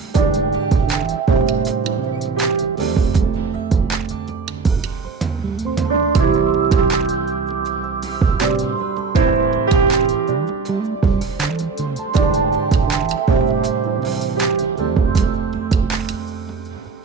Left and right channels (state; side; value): quieter; left; 4.6 dB